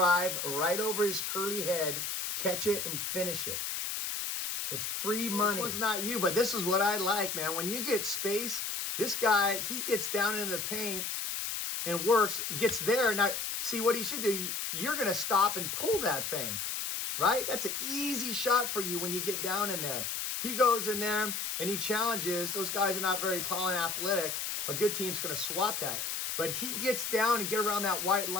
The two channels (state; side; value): noise; left; hiss, 2 dB below the sound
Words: right over his curly head, catch it, and finish it. It's free money. This one's not you, but this is what I like, man. When you get space, this guy, he gets down into the paint and works, gets there. Now, see what he should do. You're going to stop and pull that thing. Right? That's an easy shot for you when you get down in there. He goes in there and he challenges. Those guys are not very tall and athletic. A good team's going to swat that. But he gets down and get around that white